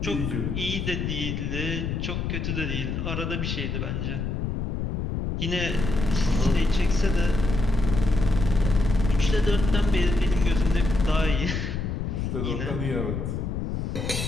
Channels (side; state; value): left; noise; rumble, 2 dB below the sound